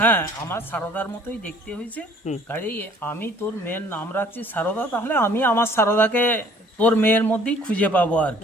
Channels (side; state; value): both; normal; correlation 0.55